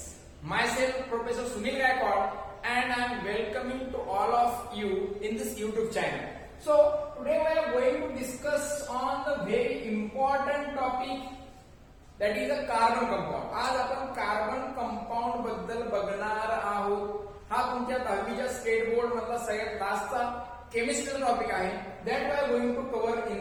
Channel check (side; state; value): both; identical; correlation 1.00